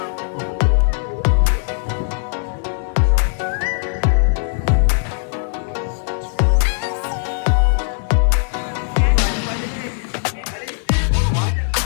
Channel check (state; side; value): silent; right; digital silence